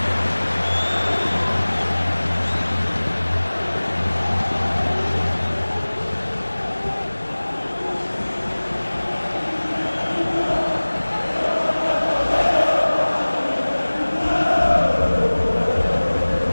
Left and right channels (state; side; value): inverted; both; correlation -1.00